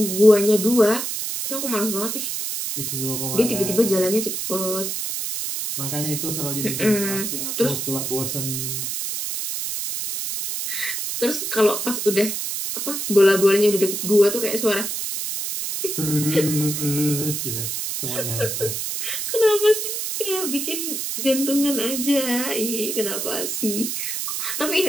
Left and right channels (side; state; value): right; noise; hiss, 3 dB below the sound